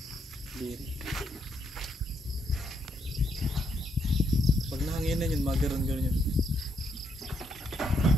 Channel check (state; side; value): normal; both; correlation 0.76